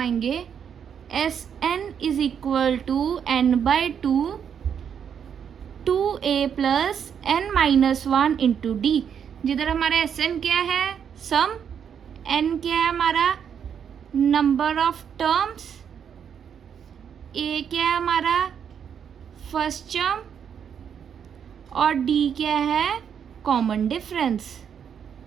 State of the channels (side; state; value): left; quieter; 7.9 dB